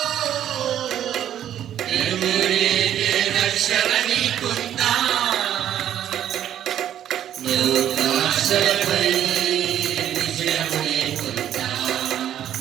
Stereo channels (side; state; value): left; quieter; 10.8 dB